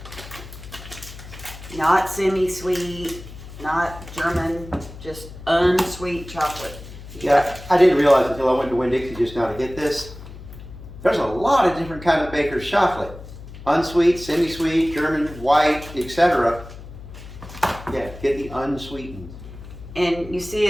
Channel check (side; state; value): left; noise; hum, 15 dB below the sound